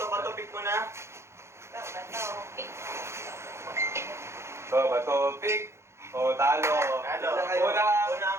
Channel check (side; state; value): left; late; 0.13 ms